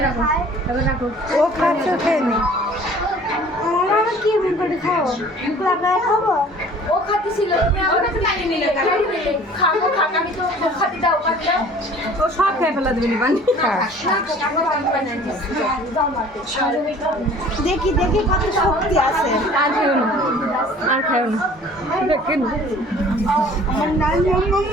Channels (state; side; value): normal; both; correlation 0.49